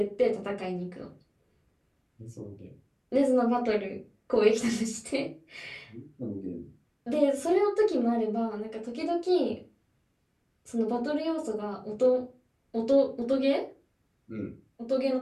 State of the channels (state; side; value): identical; both; correlation 1.00